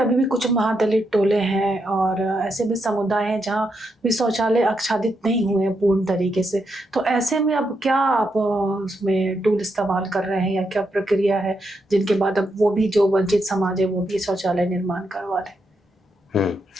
भी कुछ महादलित टोले हैं और ऐसे भी समुदाय हैं जहाँ भी शौचालय आच्छादित नहीं हुए हैं पूर्ण तरीके से। तो ऐसे में अब क्या आप उसमें टूल इस्तेमाल कर रहे हैं, या क्या प्रक्रिया है जिनके बाद अब वो भी जो वंचित समाज है वो भी शौचालय निर्माण करवा रहे?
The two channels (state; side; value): normal; both; correlation 0.82